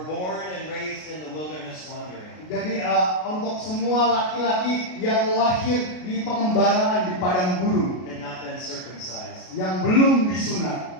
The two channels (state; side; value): late; right; 33 ms